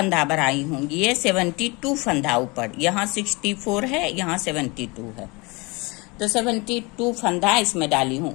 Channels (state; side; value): quieter; right; 26.6 dB